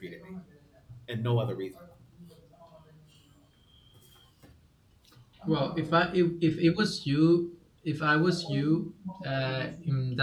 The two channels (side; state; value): both; identical; correlation 1.00